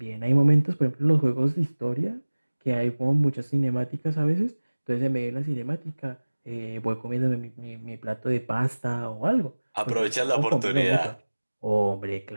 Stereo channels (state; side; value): inverted; both; correlation -1.00